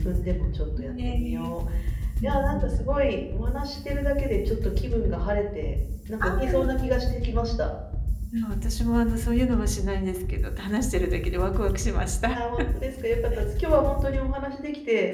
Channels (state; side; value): identical; both; correlation 1.00